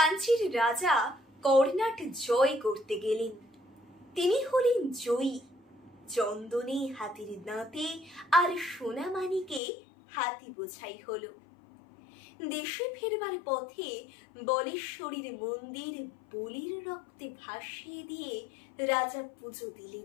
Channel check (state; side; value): drops out; right; at 9.6 s